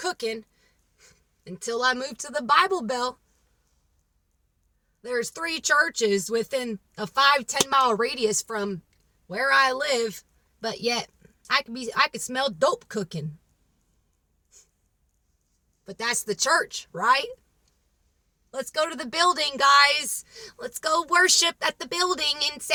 until I moved to the Bible Bell. There's 3 churches within a 5-10 mile radius from where I live, but yet I could smell dope cooking. But that's the church, right? Let's go to the building, guys. Let's go worship at the building and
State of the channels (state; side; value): identical; both; correlation 1.00